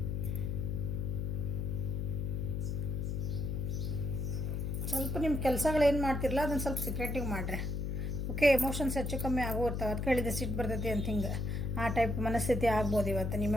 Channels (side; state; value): left; noise; hum, 1 dB below the sound